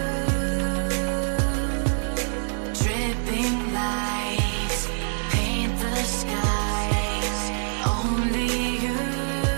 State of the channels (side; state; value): left; silent; 62 dB below the other